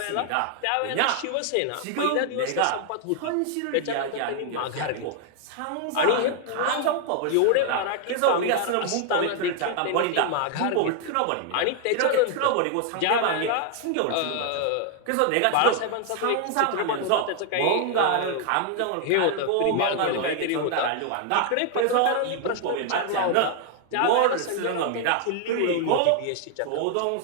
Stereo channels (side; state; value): both; different; correlation 0.00